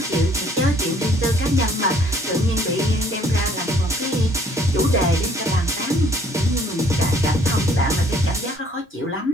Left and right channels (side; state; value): both; normal; correlation 0.60